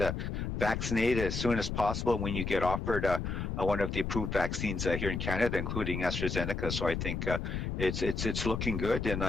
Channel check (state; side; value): noise; left; rumble, 3 dB below the sound